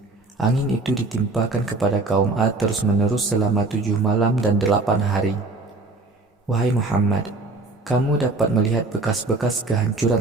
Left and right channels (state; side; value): quieter; left; 3.3 dB